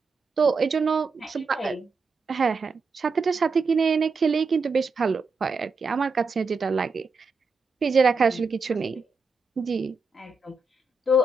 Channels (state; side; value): quieter; left; 3.7 dB